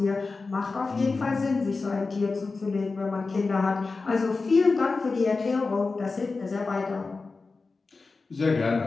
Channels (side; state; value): right; quieter; 4.0 dB